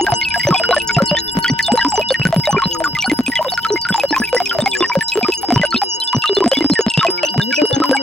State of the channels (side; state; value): both; normal; correlation 0.74